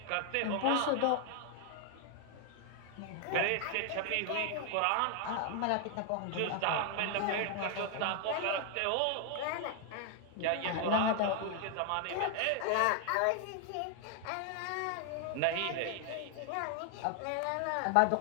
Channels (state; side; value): different; both; correlation 0.00